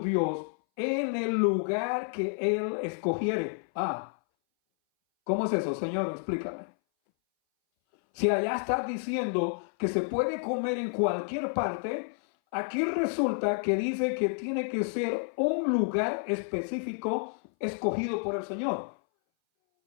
en el lugar que Él escogiere. ¿Cómo es eso, Señor? Explícame. Si allá está diciendo que se puede comer en cualquier parte, aquí resulta que dice que tiene que ser un lugar específico escogido por el Señor.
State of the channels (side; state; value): right; silent; 58 dB below the other